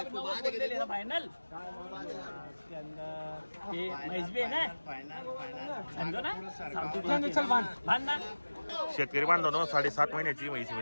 90 बोल दे लेना फाइनल. इसके अंदर ये म्हैस भी है ना, समझो ना. चल बांध ना. शेतकरी बांधवांनो 7.5 महिन्याची म्हैस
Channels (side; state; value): both; inverted; correlation -1.00